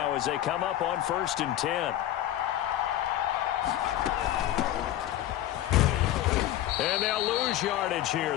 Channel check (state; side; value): quieter; right; 13.1 dB